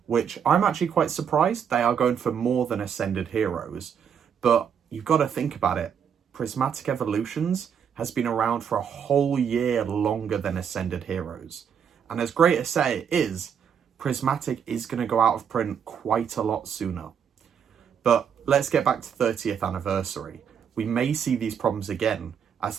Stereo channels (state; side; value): quieter; left; 7.7 dB